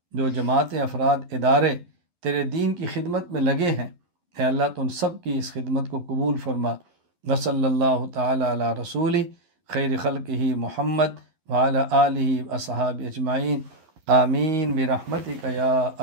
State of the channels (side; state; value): left; late; 11 ms